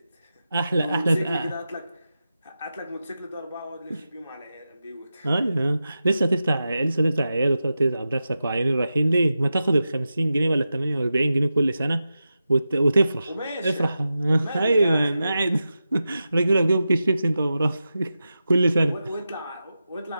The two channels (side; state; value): both; inverted; correlation -0.91